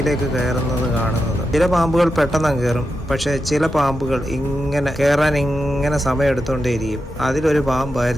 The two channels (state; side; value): normal; both; correlation 0.88